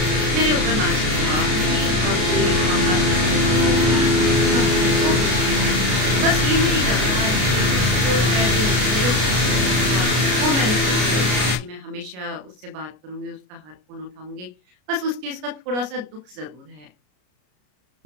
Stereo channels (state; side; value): late; left; 33 ms